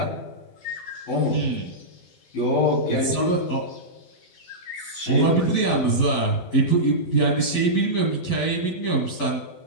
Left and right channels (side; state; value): right; late; 11 ms